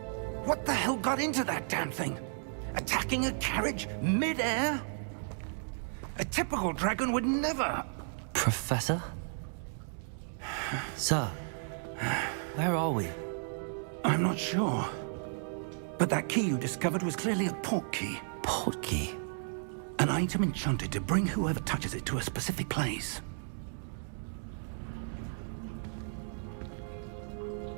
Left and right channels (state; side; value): silent; left; digital silence